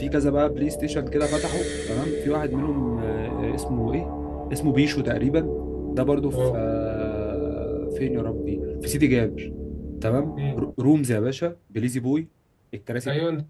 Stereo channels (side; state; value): both; identical; correlation 1.00